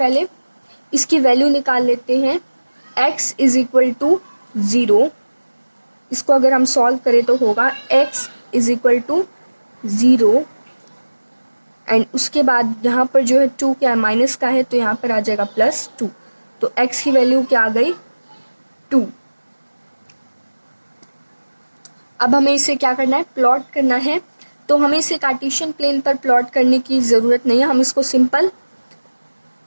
इसकी वैल्यू निकाल लेते हैं। x इज इक्वल टू 0, इसको अगर हम सॉल्व करें तो होगा x is equal to 0 and उसके बाद यहाँ पर जो है 2 क्या है माइनस का है तो यहाँ पर आ जाएगा +2। तो x की वैल्यू क्या आ गई 2। अब हमें इसे क्या करना है प्लॉट करना है। तो हमें इसे कार्टेशियन प्लेन पर प्लॉट करने की ज़रूरत नहीं है, हम इसको सिंपल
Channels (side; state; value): both; inverted; correlation -1.00